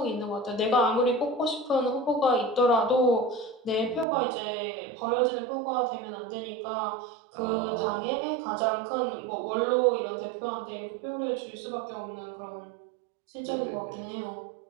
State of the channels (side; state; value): left; drops out; at 4.0 s